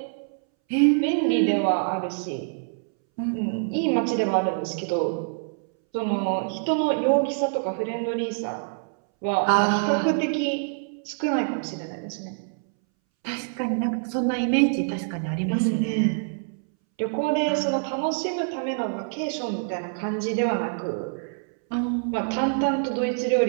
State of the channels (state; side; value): silent; left; 61 dB below the other